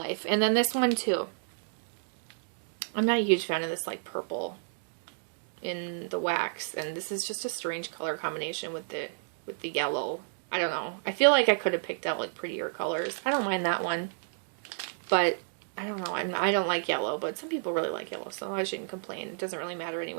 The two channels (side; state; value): left; silent; digital silence